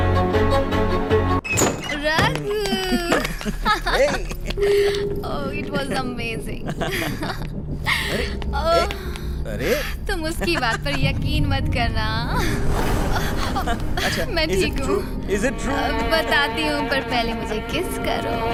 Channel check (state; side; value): identical; both; correlation 1.00